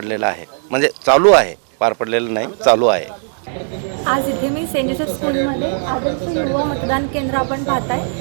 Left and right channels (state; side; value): silent; left; digital silence